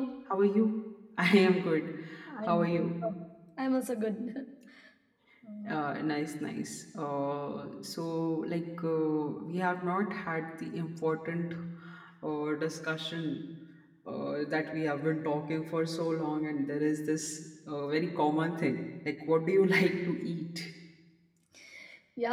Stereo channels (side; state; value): both; identical; correlation 1.00